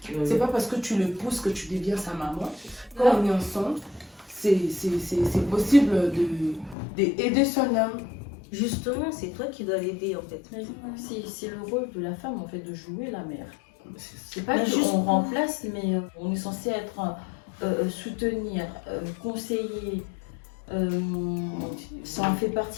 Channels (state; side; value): drops out; right; at 6.8 s